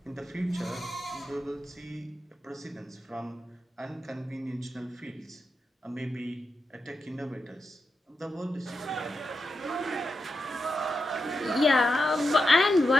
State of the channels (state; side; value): normal; both; correlation 0.87